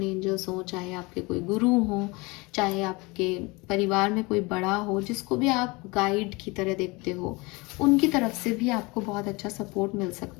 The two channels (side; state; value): right; quieter; 25.3 dB